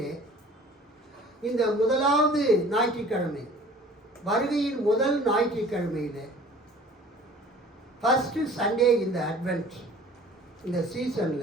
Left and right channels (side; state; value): both; normal; correlation 0.48